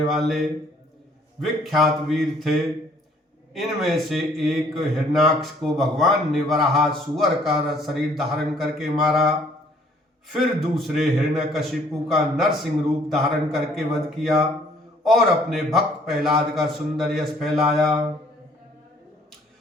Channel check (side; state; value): both; normal; correlation 0.60